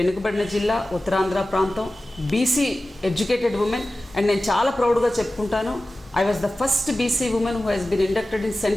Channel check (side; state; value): both; normal; correlation 0.95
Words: జిల్లా, ఉత్తరాంధ్ర ప్రాంతం, బీసీ ఎడ్యుకేటెడ్ ఉమెన్. అండ్ నేను చాలా ప్రౌడ్గా చెప్పుకుంటాను, I was the first BC women who has been inducted in